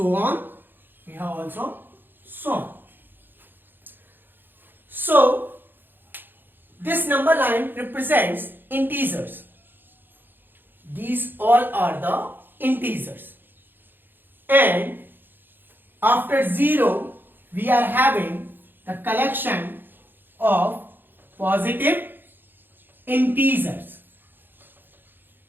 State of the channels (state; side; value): late; left; 0.096 ms